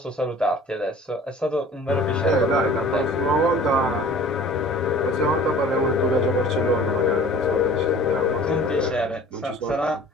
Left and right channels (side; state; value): both; normal; correlation 0.47